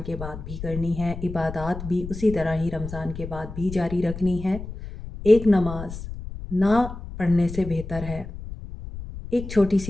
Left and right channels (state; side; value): noise; left; rumble, 10 dB below the sound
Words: के बाद भी करनी है। इबादत भी उसी तरह ही रमज़ान के बाद भी जारी रखनी है। एक नमाज ना पढ़ने से बेहतर है, एक छोटी